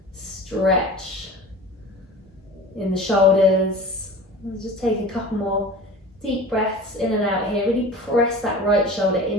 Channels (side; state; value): both; normal; correlation 0.37